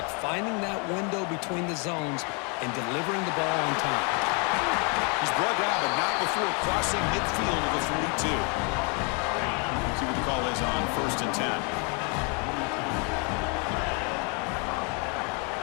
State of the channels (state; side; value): quieter; right; 34.9 dB